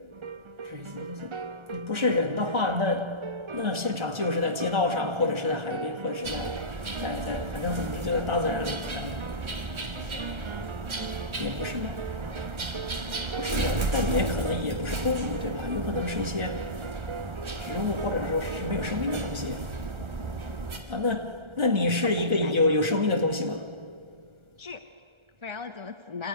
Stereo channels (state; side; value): late; left; 1.4 ms